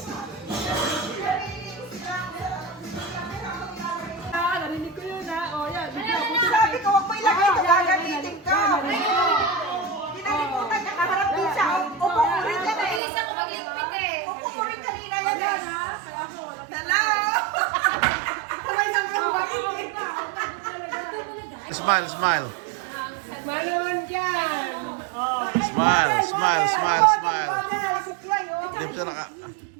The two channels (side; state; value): left; drops out; at 13.0 s